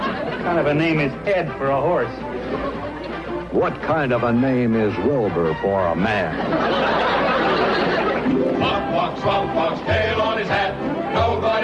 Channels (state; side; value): identical; both; correlation 1.00